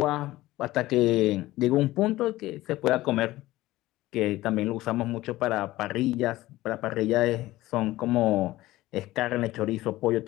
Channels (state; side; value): quieter; right; 17.2 dB